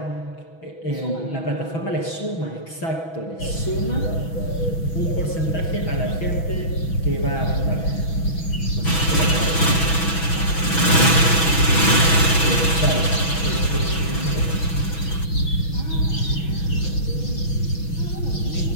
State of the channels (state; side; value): late; right; 6.1 ms